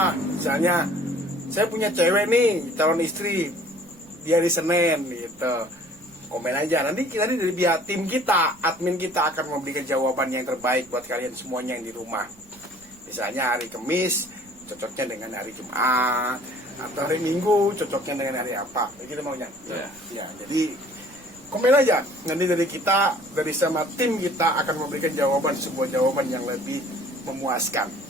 Misalnya saya punya cewek nih, calon istri, dia di Senin gitu, komen aja. Nanti dari pihak tim kita, admin kita akan memberikan jawaban yang terbaik buat kalian semuanya yang di rumah. Misalnya hari Kamis cocoknya dengan hari Jumat, atau hari Minggu cocoknya dengan hari apa, begitu maunya. Ya, jadi komen aja. Nanti dari kita, dari sama tim kita akan memberikan sebuah jawaban yang lebih memuaskan.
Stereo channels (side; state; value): right; noise; rumble, 27 dB below the sound